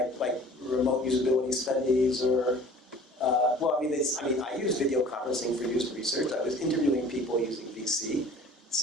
remote usability studies, or? I use video conferencing for user research. I was interviewing people using VC,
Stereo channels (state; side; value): normal; both; correlation 0.47